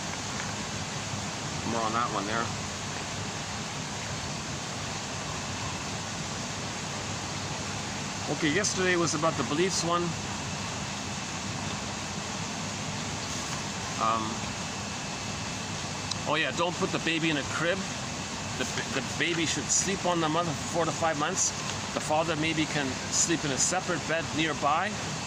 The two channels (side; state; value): both; identical; correlation 1.00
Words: More on that one there. Okay, yesterday was about the beliefs one. Oh yeah, don't put the baby in a crib. The baby should sleep on the mother for 4 to 5 months. The father maybe can sleep in a separate bed nearby.